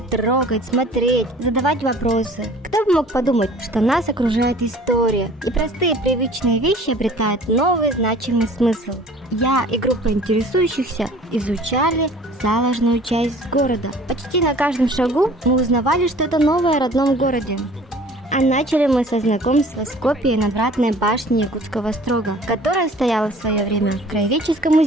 трогать, смотреть, задавать вопросы. Кто бы мог подумать, что нас окружает история, и простые привычные вещи обретают новый значимый смысл. Я и группа интересующихся изучали заложенную часть города. Почти на каждом шагу мы узнавали что-то новое о родном городе. А начали мы со знакомства с копией надвратной башни Якутского острога, которая стояла в свое время в Краеведческом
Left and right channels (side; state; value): both; normal; correlation 0.49